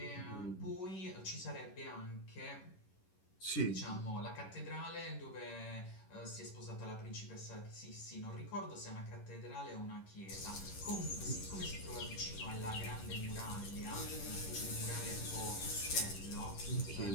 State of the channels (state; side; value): late; right; 11 ms